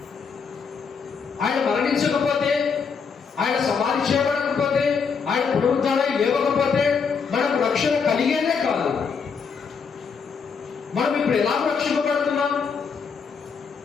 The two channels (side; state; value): right; quieter; 5.8 dB